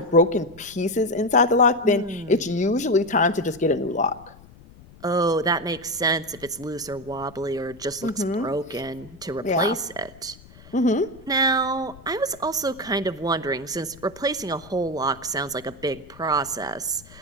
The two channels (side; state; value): left; noise; rumble, 22 dB below the sound